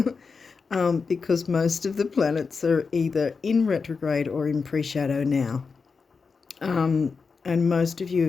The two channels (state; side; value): quieter; right; 5.0 dB